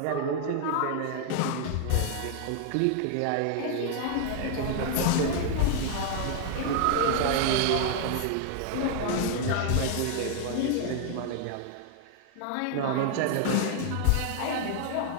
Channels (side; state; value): both; different; correlation 0.00